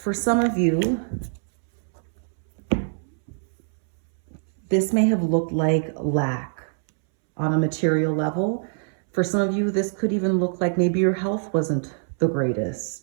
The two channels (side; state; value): left; silent; 63 dB below the other